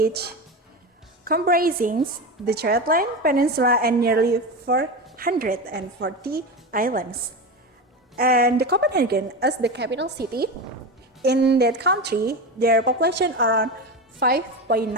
comprises the Shetland Peninsula and nearly 440 islands. And the Copenhagen as the capital city. In that country, their population around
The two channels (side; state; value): both; normal; correlation 0.21